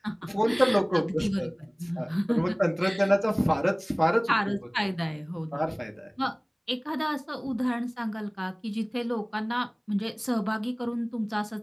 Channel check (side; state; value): both; identical; correlation 1.00